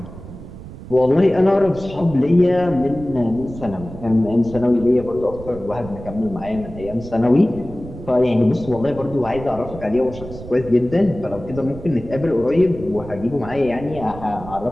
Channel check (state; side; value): noise; right; rumble, 14 dB below the sound